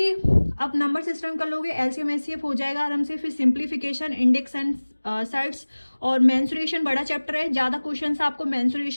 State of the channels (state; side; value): inverted; both; correlation -1.00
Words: आप नंबर सिस्टम कर लोगे, एलसीएम एचसीएफ हो जाएगा आराम से। फिर सिंप्लीफिकेशन, इंडेक्स एंड सेट्स और मेंसुरेशन बड़ा चैप्टर है, ज़्यादा क्वेश्चंस आपको